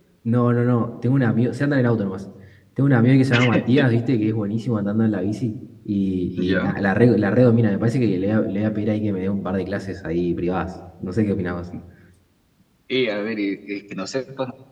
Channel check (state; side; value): identical; both; correlation 1.00